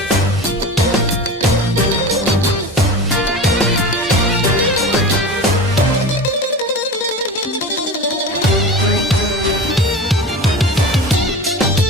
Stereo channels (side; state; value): both; normal; correlation 0.31